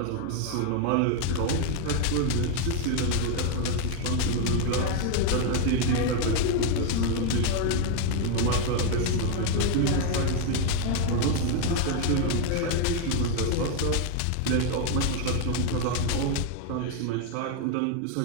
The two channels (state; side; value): different; both; correlation 0.01